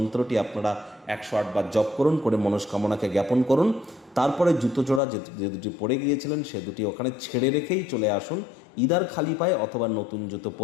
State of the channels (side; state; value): right; drops out; at 5.0 s